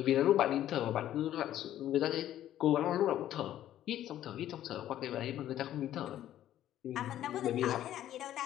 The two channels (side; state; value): right; quieter; 12.3 dB